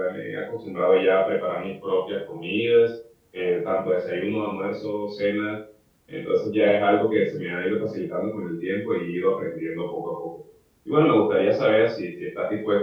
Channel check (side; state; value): both; identical; correlation 1.00